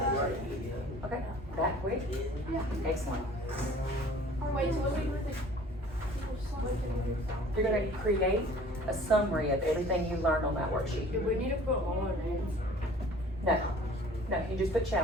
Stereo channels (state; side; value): normal; both; correlation 0.49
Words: Okay, that quick? Excellent. Wait, so what do we do with You're gonna create a summary of everything you learned on that worksheet. Do we need to put all our names? No, you just put